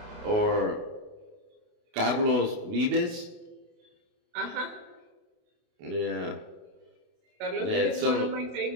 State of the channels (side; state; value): left; late; 28 ms